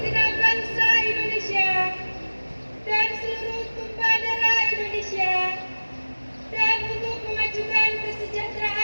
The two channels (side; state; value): both; inverted; correlation -1.00